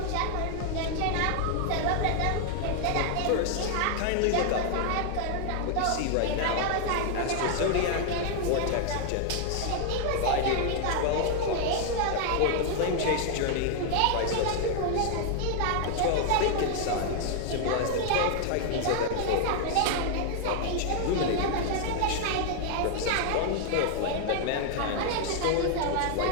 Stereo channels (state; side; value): different; both; correlation 0.00